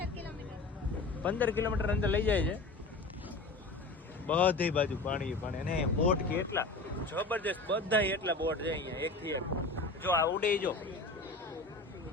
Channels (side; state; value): right; quieter; 3.3 dB